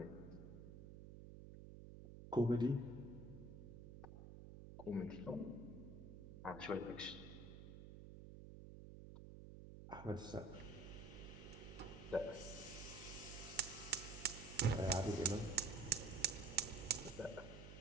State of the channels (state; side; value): noise; right; hum, 12 dB below the sound